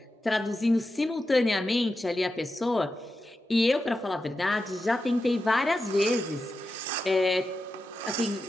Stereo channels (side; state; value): both; normal; correlation 0.90